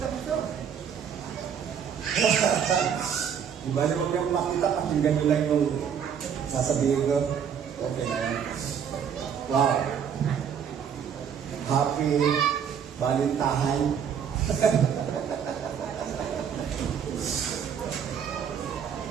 po ito. Di ba naman yung makita, pakinggan nyo lang yung sasabihin ko. Okay na yan. Wow. Happy Valentine.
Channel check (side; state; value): left; quieter; 7.8 dB